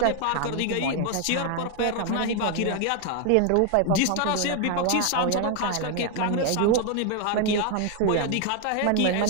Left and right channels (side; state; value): both; different; correlation 0.01